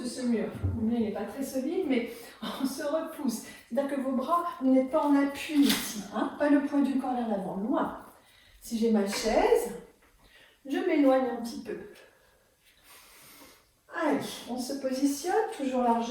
de ce mur. Le mien n'est pas très solide, mais on se repousse. C'est-à-dire que vos bras, vous n'êtes pas en appui ici, hein, pas le poids du corps vers l'avant, loin. Si j'ai ma chaise, je m'éloigne un petit peu. Allez, on se positionne, toujours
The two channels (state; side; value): identical; both; correlation 1.00